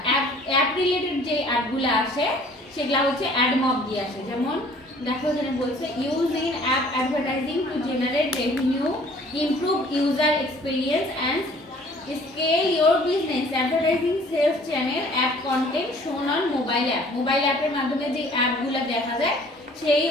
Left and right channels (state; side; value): normal; both; correlation 0.54